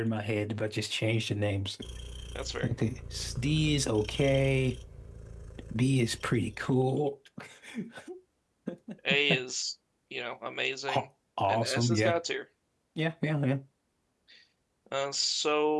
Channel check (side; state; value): both; identical; correlation 1.00